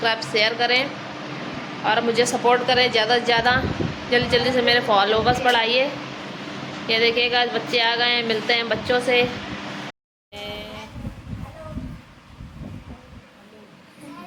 शेयर करें और मुझे सपोर्ट करें ज़्यादा से ज़्यादा। जल्दी जल्दी से मेरे फॉलोवर्स बढ़ाइए। ये देखिएगा आज बच्चे आ गए हैं, मिलते हैं बच्चों से।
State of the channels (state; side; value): identical; both; correlation 1.00